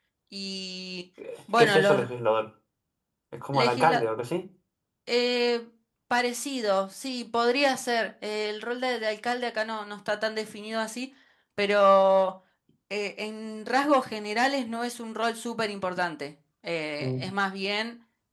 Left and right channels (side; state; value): both; identical; correlation 1.00